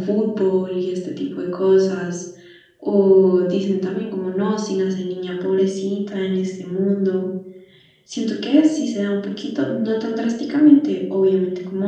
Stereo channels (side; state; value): both; identical; correlation 1.00